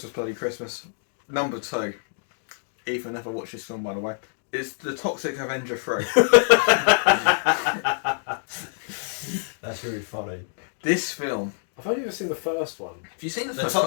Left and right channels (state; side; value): silent; right; digital silence